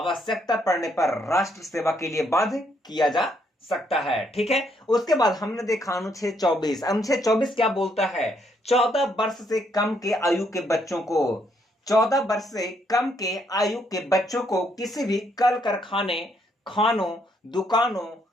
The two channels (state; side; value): normal; both; correlation 0.73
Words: पड़ने पर राष्ट्र सेवा के लिए बाध्य किया जा सकता है। ठीक है, उसके बाद हमने देखा अनुच्छेद 24। अनुच्छेद 24 क्या बोलता है? 14 वर्ष से कम के आयु के बच्चों को, 14 वर्ष से कम के आयु के बच्चों को किसी भी कल कारखाने, खानों, दुकानों